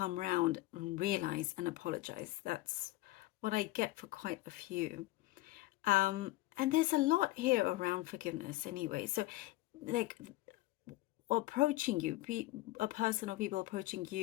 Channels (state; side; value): quieter; right; 18.3 dB